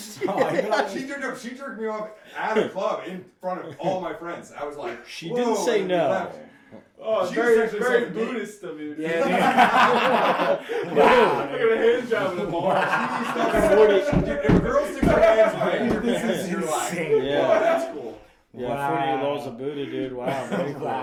She jerked me off at a club in front of all my friends. I was like, She whoa, didn't say and we no. left. Oh, She very, was actually very sucking dick. Buddhist of you. Yeah, Wow. Look at a hand job in the bar. Dude, if a girl sticks her hands behind your This pants, is you're like, insane. Yeah. oh, that's cool. Yeah, Wow. 40 laws of Buddha, dude. Wow, very cool.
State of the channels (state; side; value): identical; both; correlation 1.00